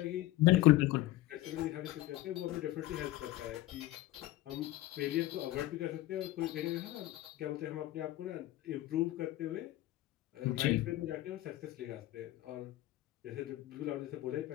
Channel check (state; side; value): quieter; right; 16.2 dB